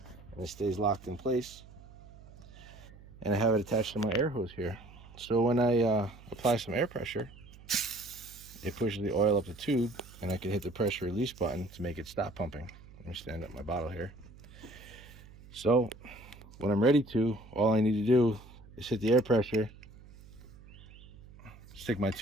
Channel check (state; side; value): noise; right; hum, 20 dB below the sound